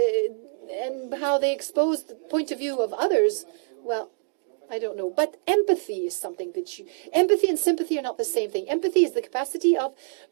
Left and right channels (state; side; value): silent; left; digital silence